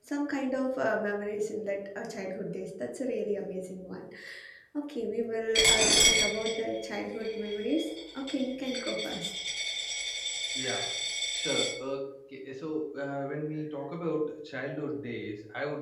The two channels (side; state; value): both; identical; correlation 1.00